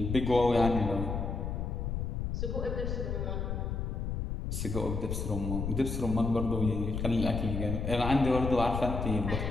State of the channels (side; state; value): left; noise; rumble, 2 dB below the sound